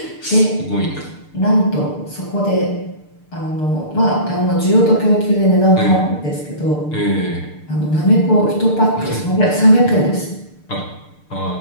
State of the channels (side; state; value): right; late; 6.7 ms